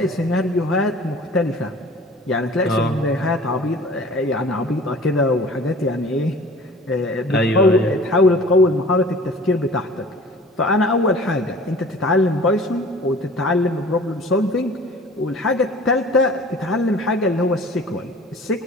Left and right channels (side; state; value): both; normal; correlation 0.46